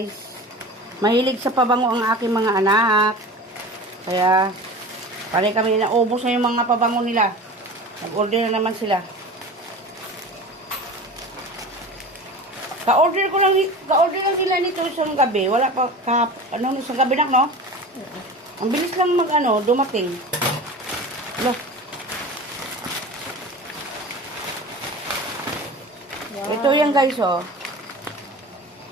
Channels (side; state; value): both; normal; correlation 0.35